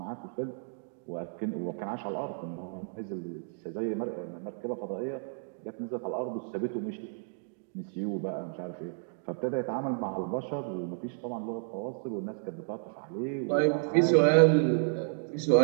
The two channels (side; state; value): left; silent; digital silence